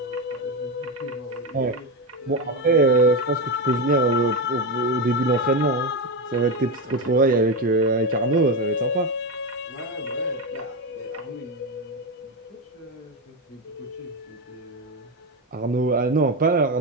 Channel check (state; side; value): normal; both; correlation 0.13